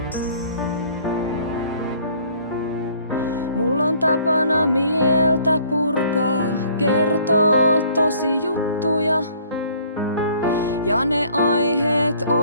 Mulla on tapana mieltä purkaa, kertoo tosi juttuja, ja ne aiheet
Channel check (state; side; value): inverted; both; correlation -0.57